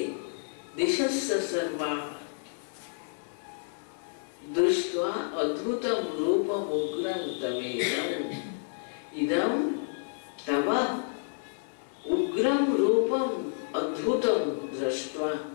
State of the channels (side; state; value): right; silent; 58 dB below the other